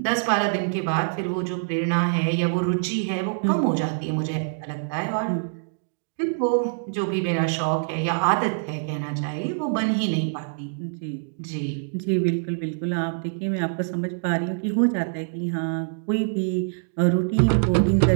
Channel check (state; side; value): silent; left; digital silence